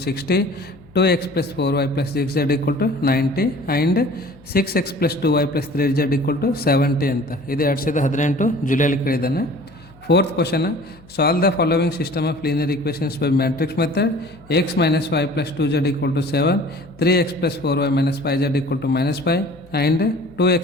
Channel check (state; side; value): noise; left; hum, 26 dB below the sound